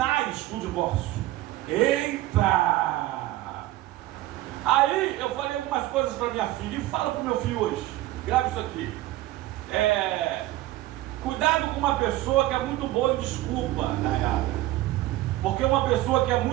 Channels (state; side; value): quieter; left; 16.4 dB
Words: do divórcio. Eita! Aí eu falei algumas coisas para minha filha e falo para o meu filho hoje. Grave isso aqui. Cuidado com uma pessoa que é muito boa em desculpa, tá errado? Porque uma pessoa que é